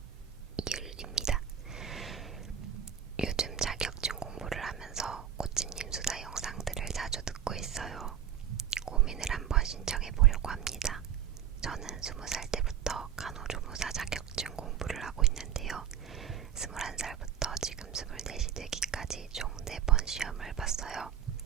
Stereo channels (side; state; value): left; quieter; 9.4 dB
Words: 이율입니다. 요즘 자격증 공부를 하면서 꽃집님 수다 영상들을 자주 듣고 있어요. 고민을 한번 신청해 보려고 합니다. 저는 20살 때부터 간호조무사 자격증 공부를 하고 있는데요. 21살부터 지금 24이 되기까지 총 4번 시험을 봤어요.